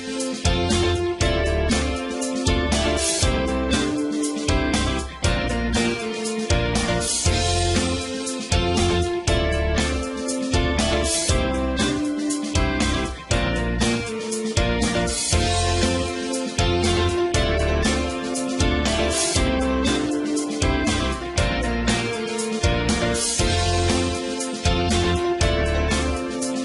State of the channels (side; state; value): both; identical; correlation 1.00